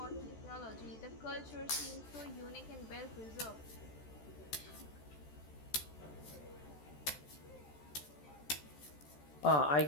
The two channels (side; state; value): right; late; 14 ms